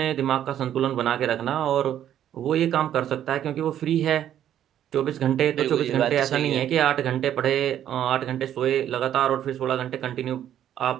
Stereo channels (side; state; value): left; quieter; 10.8 dB